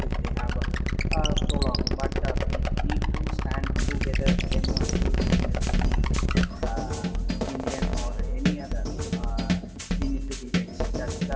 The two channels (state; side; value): identical; both; correlation 1.00